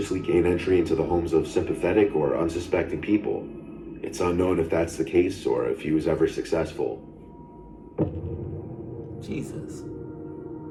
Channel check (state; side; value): identical; both; correlation 1.00